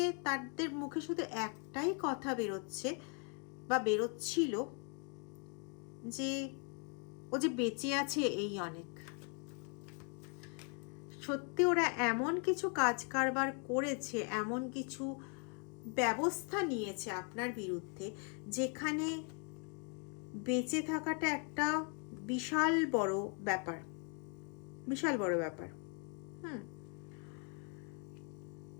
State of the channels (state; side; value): quieter; right; 39.7 dB